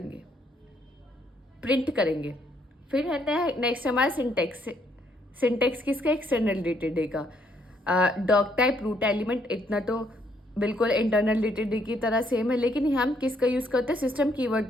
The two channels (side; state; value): both; normal; correlation 0.70